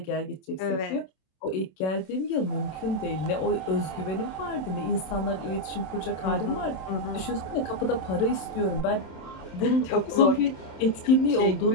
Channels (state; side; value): late; right; 27 ms